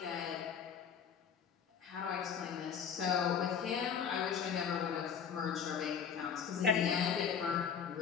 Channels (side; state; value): right; quieter; 7.3 dB